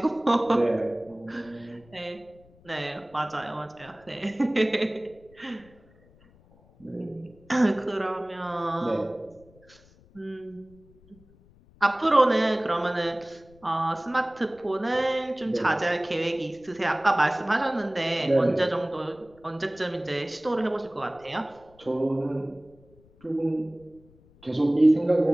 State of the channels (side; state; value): left; noise; rumble, 28 dB below the sound